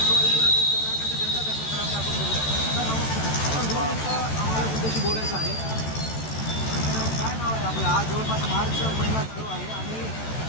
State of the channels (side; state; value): right; late; 14 ms